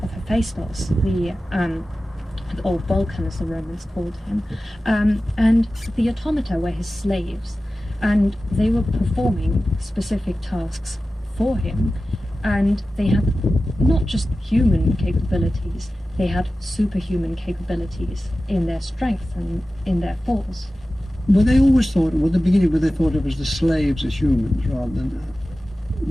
Hephaestus, or Vulcan as the Romans called him, and the automata were his slaves, and they were performing specific tasks for him, and they had not just human capabilities, they had superhuman capabilities in their strength and in their force. Were they always thought, at the beginning, were they thought of as the slaves as humans rather than...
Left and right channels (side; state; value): both; normal; correlation 0.95